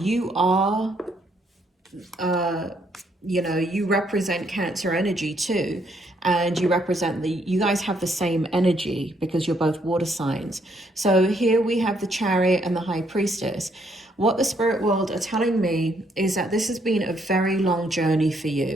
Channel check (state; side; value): normal; both; correlation 0.71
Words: are, you represent Cancer energy too. And you represent you guys have the same energy because you're both water signs. So here we have the Chariot and the High Priestess. What the spirit world are telling me is that this has been a very long journey for